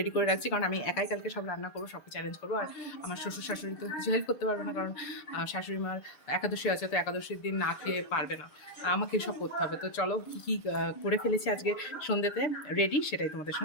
করে রাখছি, কারণ আমি একাই কালকে সব রান্না করবো, সব কিছু অ্যারেঞ্জ করবো। আর আমার শ্বশুর শাশুড়ি তো কিছু হেল্প করতে পারবে না, কারণ শাশুড়ি মার একাদশী আছে, তো একাদশীর দিন না খেয়ে পারবে না, আমাকে সব করতে হবে। তো চলো কী কী করে ফেলেছি আজকে সন্ধ্যেতে রেডি, সেটাই তোমাদের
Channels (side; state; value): right; late; 6.8 ms